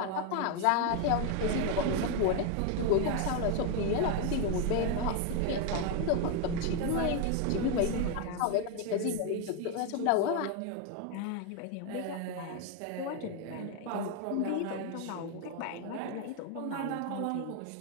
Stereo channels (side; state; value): both; different; correlation 0.01